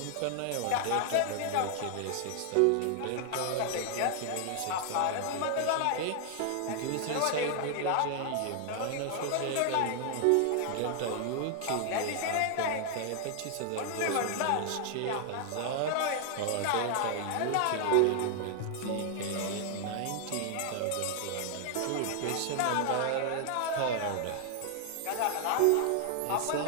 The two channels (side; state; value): both; different; correlation 0.00